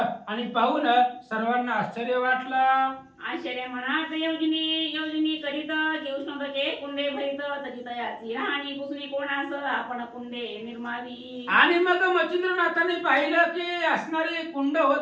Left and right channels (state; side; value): identical; both; correlation 1.00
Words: आणि पाहून सर्वांना आश्चर्य वाटलं. आश्चर्य मनात योजनी करीत की उष्णतेचे कुंडे भरीत तरी तयाची राहणी पुसणी कोणास आपण कुंडे निर्मावी. आणि मग मच्छिंद्रनाथाने पाहिलं की असणारी कुंड